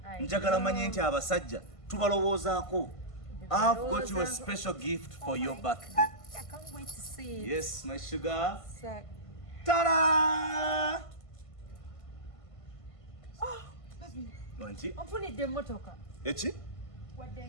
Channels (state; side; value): late; right; 1.5 ms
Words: Njagala manye nti abasajja tubalowoozaako. I've got you a special gift for your birthday. I can't wait to see it. Yes, my sugar. So, Ta-da! Wanti? onfunidde emmotoka. Eki? Wadde